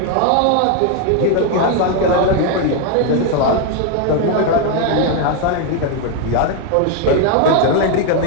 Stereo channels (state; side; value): different; both; correlation 0.01